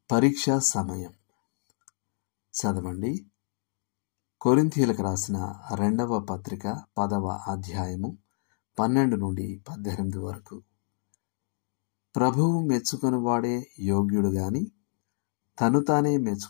పరీక్షా సమయం. చదవండి. కొరింథీయులకు రాసిన 2వ పత్రిక 10వ అధ్యాయము 12 నుండి 18 వరకు. ప్రభువు మెచ్చుకొనివాడే యోగ్యుడు గాని తను తానే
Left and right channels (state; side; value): silent; right; digital silence